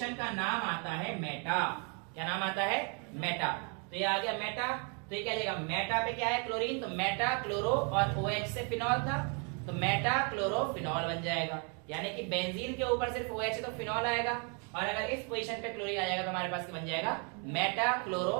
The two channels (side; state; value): left; quieter; 37.2 dB